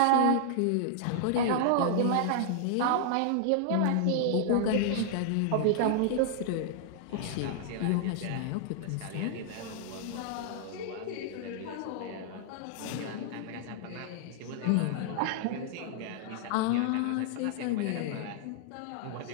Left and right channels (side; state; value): both; different; correlation -0.01